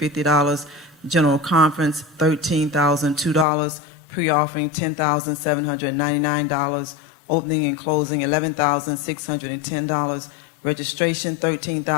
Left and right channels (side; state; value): right; drops out; at 3.5 s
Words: General Conference, $13,002. Pre-offering, $10,799. Opening and closing, $11,610. Registration,